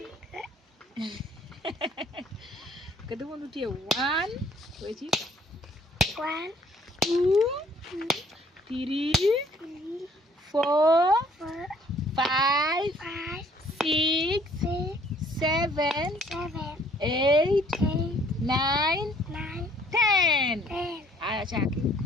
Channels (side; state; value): both; normal; correlation 0.60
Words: Kudumu ndutie 1, wechi. 1, 2, 3, 4, 5, 6, 7, 8, 9, 10. Aya chaki.